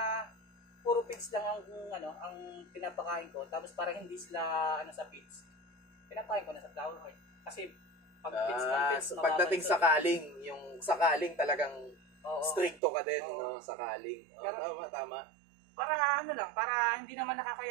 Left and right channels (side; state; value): left; drops out; at 12.8 s